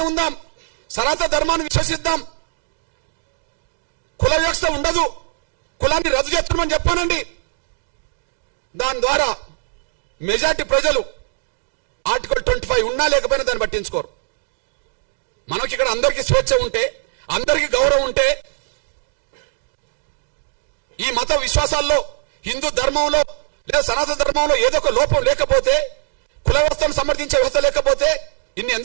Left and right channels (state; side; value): silent; left; digital silence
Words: ఉందాం, సనాతన ధర్మాన్ని విశ్వసిద్దాం. కుల వ్యవస్థ ఉండదు, కులాన్ని రద్దు చేస్తున్నామని చెప్పానండి. దాని ద్వారా మెజార్టీ ప్రజలు ఆర్టికల్ 25 ఉన్నా లేకపోయినా దాన్ని పట్టించుకోరు. మనకి ఇక్కడ అందరికీ స్వేచ్ఛ ఉంటే, అందరికీ గౌరవం ఉంటే, ఈ మత విశ్వాసాల్లో, హిందూ ధర్మంలో లేదా సనాతన ధర్మంలో ఏదో ఒక లోపం లేకపోతే, కుల వ్యవస్థను సమర్థించే వ్యవస్థ లేకపోతే ఇన్ని